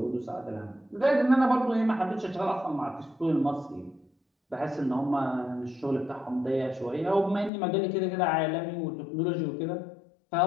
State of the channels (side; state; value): right; drops out; at 7.5 s